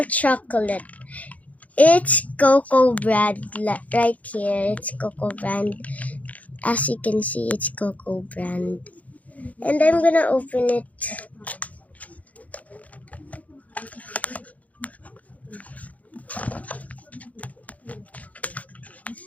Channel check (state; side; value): late; right; 0.071 ms